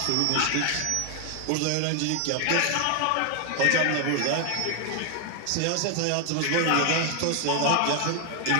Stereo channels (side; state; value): both; different; correlation 0.00